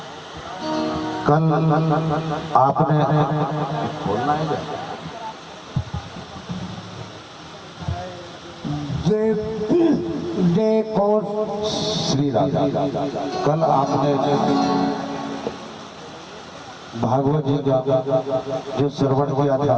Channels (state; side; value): identical; both; correlation 1.00